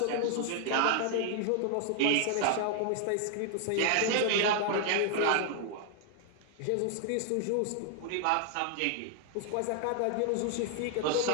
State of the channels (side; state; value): both; different; correlation 0.00